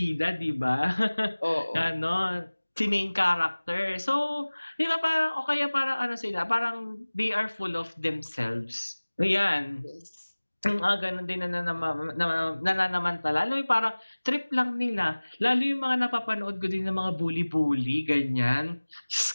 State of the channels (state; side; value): inverted; both; correlation -1.00